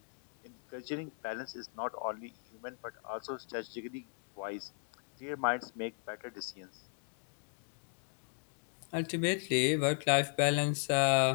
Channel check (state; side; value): silent; right; 53 dB below the other